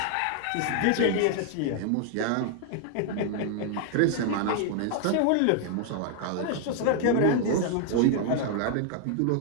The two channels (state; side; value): different; both; correlation 0.00